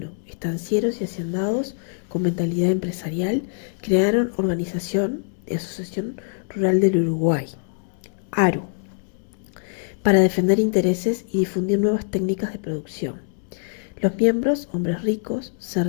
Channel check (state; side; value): silent; right; digital silence